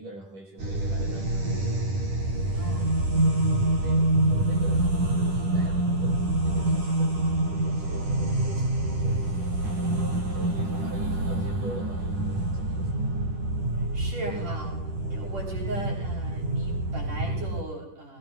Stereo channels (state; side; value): late; left; 10 ms